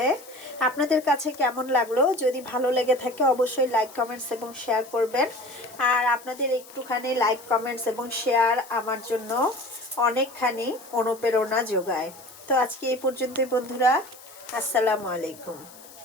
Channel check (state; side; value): noise; left; hiss, 20 dB below the sound